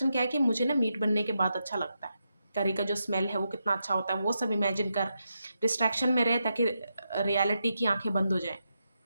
क्या है कि मुझे ना मीट बनने के बाद अच्छा लगता है। करी का जो स्मेल है वो कितना अच्छा होता है, वो सब इमेजिन कर, डिस्ट्रैक्शन में रहे ताकि रियलिटी की आँखें बंद हो जाएँ।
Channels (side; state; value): both; inverted; correlation -0.85